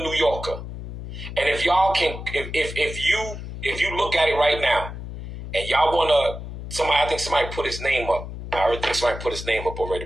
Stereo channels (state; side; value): noise; left; hum, 9 dB below the sound